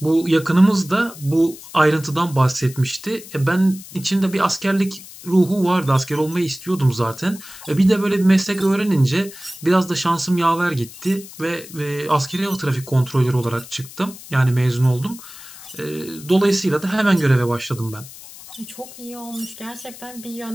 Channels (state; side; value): noise; left; hiss, 17 dB below the sound